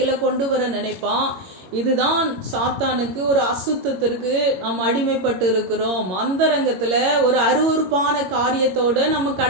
கொண்டு வர நினைப்பான். இதுதான் சாத்தானுக்கு ஒரு அசுத்தத்திற்கு நாம் அடிமைப்பட்டு இருக்கிறோம். அந்தரங்கத்துல ஒரு அருவருப்பான காரியத்தோட நம்ம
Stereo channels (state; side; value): late; left; 22 ms